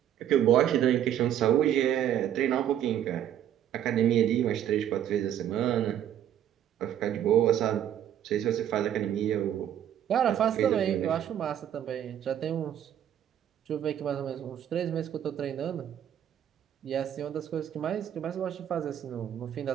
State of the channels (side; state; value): left; quieter; 10.4 dB